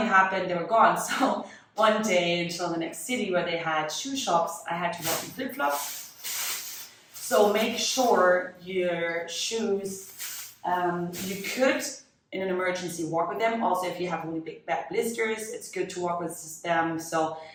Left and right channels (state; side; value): identical; both; correlation 1.00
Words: happened, they were gone. So one day until the next city where they had shoe shops, I had to walk in flip-flops. So make sure your shoes, you could in an emergency walk with them. Also, if you have really big bad blisters, it's good to walk with them. So